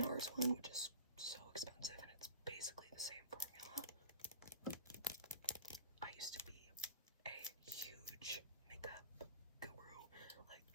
one, which is so expensive, and it's basically the same formula. I used to be a huge makeup guru,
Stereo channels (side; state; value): both; inverted; correlation -0.37